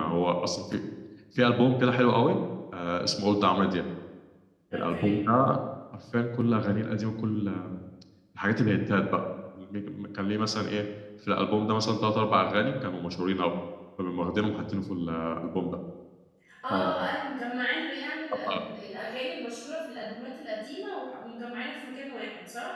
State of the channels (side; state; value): both; identical; correlation 1.00